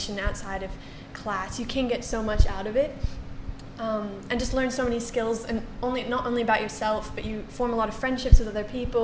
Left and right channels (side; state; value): both; identical; correlation 1.00